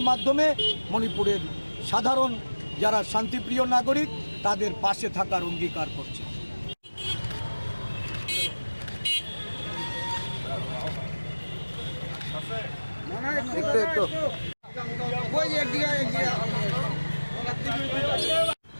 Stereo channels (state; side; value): inverted; both; correlation -1.00